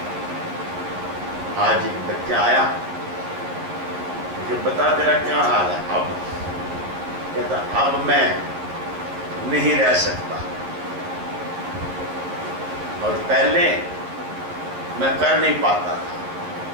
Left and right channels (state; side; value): late; left; 11 ms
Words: आज एक बच्चा आया, मुझे बता तेरा क्या हाल है? अब कहता अब मैं नहीं रह सकता, और पहले मैं कर नहीं पाता था।